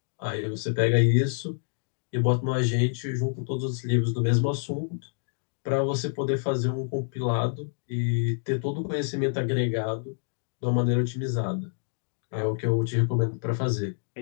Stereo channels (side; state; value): right; silent; digital silence